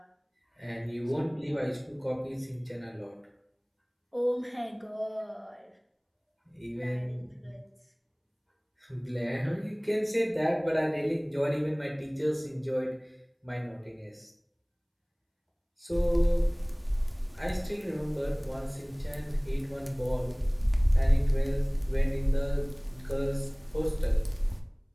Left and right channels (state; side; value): identical; both; correlation 1.00